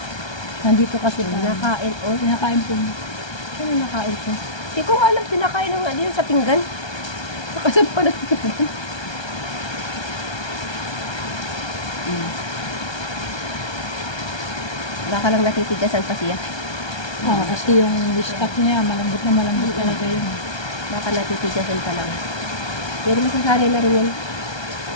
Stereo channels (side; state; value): right; late; 1.3 ms